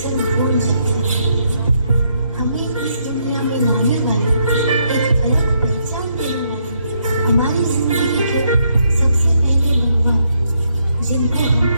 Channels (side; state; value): both; inverted; correlation -0.75